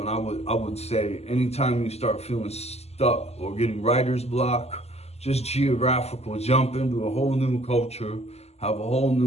I would say anytime you start feeling stuck or getting writer's block, just geographical, jump into a whole new culture, have a whole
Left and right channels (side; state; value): right; late; 0.30 ms